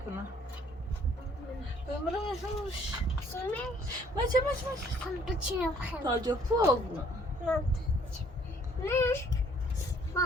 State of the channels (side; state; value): both; normal; correlation 0.61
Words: بمرمش سیمش مچه هم بچینم خیلی تاجه پوگ نه